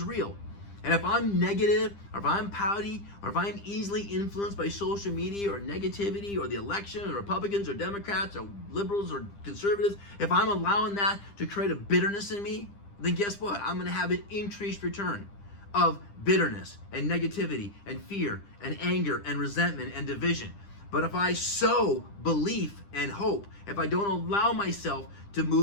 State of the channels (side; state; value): right; late; 10 ms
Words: real. And if I'm negative, or if I'm pouty, or if I'm easily influenced by social media or negativity or the election or Republicans or Democrats or liberals or conservatives, if I'm allowing that to create a bitterness in me, then guess what? I'm going to have an increased return of bitterness and negativity and fear and anger and resentment and division. But if I sow belief and hope, if I don't allow myself to